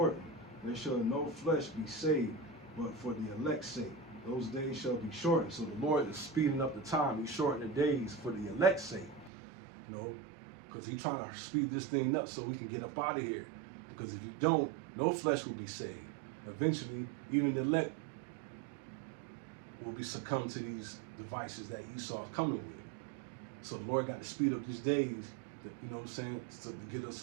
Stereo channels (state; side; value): drops out; left; at 9.3 s